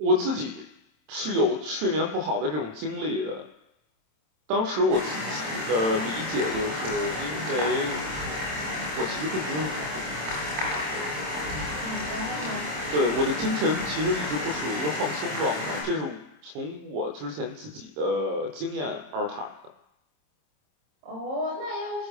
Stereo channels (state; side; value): late; left; 27 ms